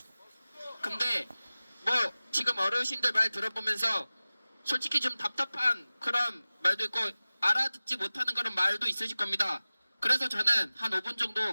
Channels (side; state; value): both; inverted; correlation -0.97